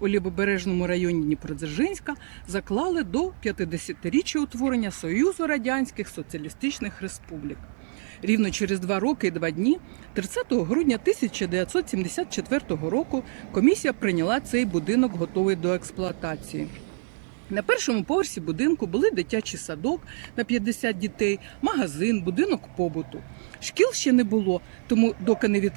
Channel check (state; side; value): silent; left; digital silence